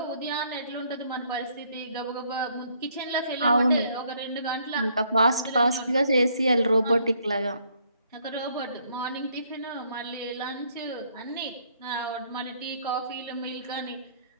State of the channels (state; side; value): inverted; both; correlation -0.67